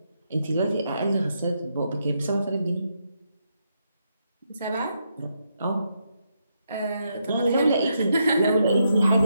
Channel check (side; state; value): both; inverted; correlation -0.80